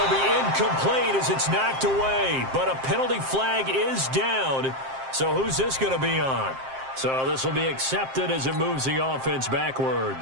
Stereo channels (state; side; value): late; left; 7.6 ms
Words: be incomplete as it's knocked away. But a penalty flag is down. So who's this going to be on? So this will be accepted as it moves the offense